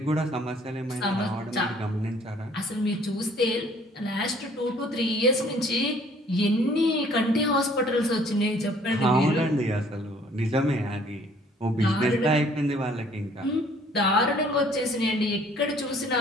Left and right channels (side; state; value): both; normal; correlation 0.58